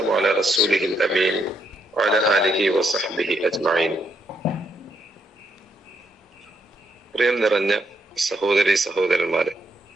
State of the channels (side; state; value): both; normal; correlation 0.76